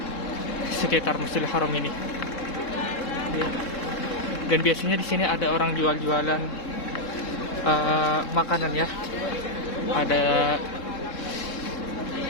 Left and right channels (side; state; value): right; late; 3.7 ms